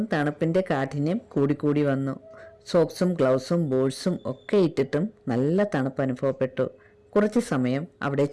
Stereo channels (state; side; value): identical; both; correlation 1.00